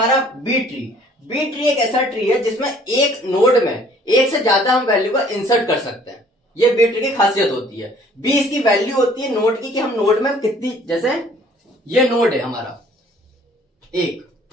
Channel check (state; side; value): normal; both; correlation 0.56